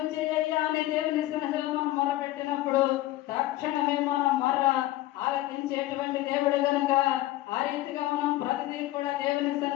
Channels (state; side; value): quieter; right; 16.0 dB